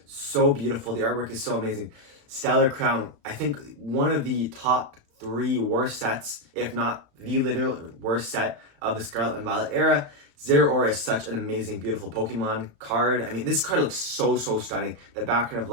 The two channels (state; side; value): late; left; 35 ms